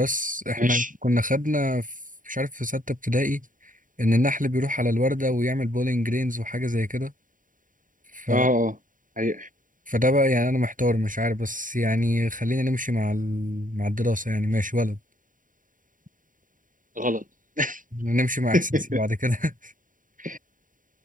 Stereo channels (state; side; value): late; left; 0.39 ms